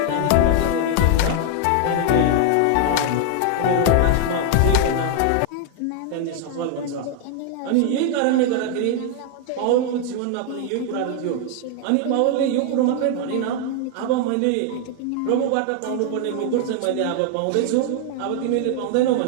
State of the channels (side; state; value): both; different; correlation 0.00